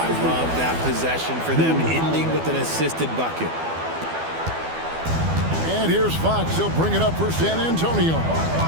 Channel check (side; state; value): left; late; 12 ms